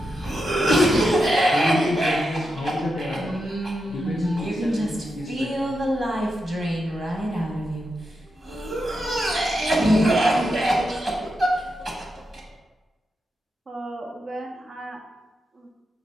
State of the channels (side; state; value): both; normal; correlation 0.86